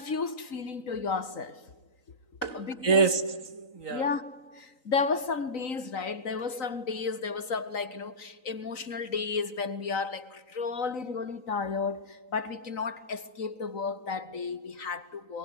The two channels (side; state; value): right; late; 3.9 ms